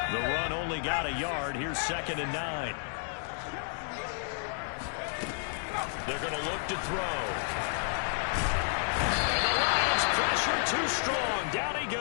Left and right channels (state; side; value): silent; right; 57 dB below the other